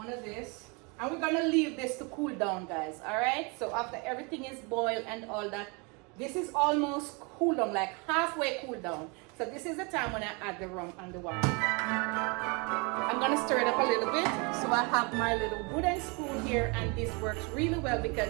of this. And we're gonna leave this to cool down, guys. Alright? So after everything is boiled and all that, this is almost cool down, like halfway cool down. So this is the time when I add the rum and the wine. I'm gonna stir it up a little bit. So I have my little wooden spoon here, and this works really well because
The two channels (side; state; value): left; quieter; 30.7 dB